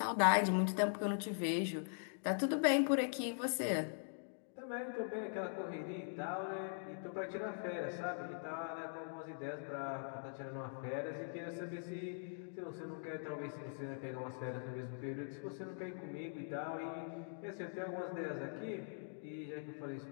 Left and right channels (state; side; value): silent; right; digital silence